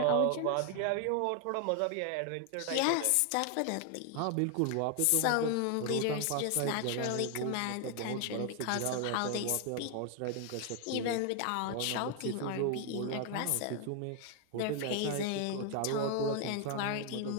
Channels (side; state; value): both; different; correlation 0.00